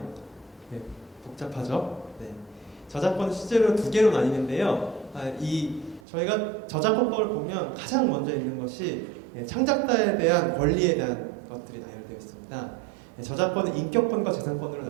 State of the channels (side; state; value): left; drops out; at 6.0 s